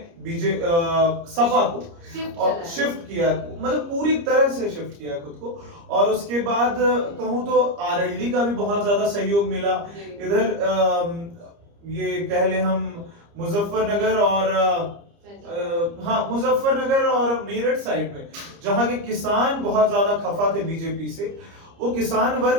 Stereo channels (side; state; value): left; late; 30 ms